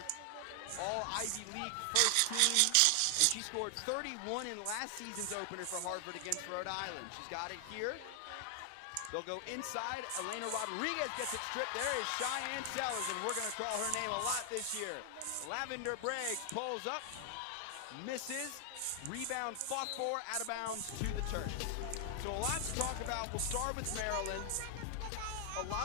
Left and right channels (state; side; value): different; both; correlation 0.00